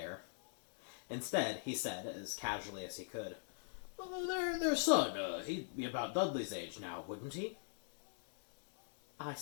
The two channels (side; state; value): right; silent; digital silence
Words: Instead, he said, as casually as he could, their son, he'd be about Dudley's age now, wouldn't he? I